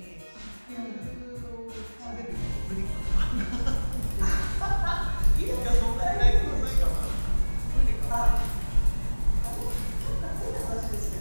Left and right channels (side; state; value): both; inverted; correlation -1.00